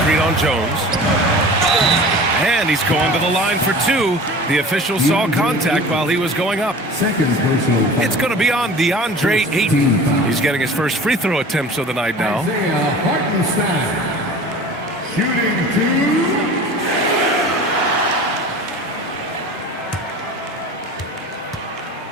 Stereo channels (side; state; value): both; normal; correlation 0.40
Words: on Jones. And he's going to the line for 2. The official saw contact while he was going up. It's going to be on DeAndre Ayton. He's getting his first free throw attempts of the night now. Isaiah Hartenstein. Shooting 2.